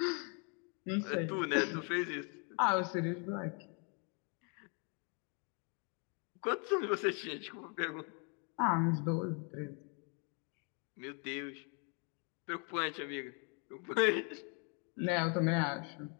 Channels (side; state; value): right; quieter; 36.5 dB